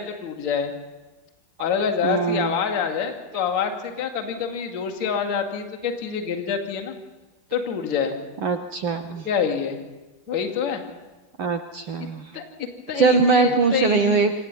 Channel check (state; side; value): late; left; 8.8 ms